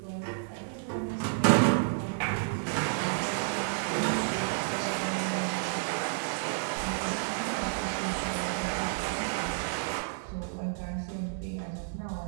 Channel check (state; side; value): silent; left; digital silence